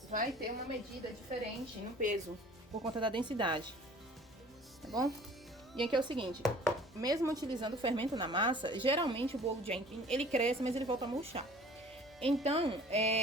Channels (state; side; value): normal; both; correlation 0.49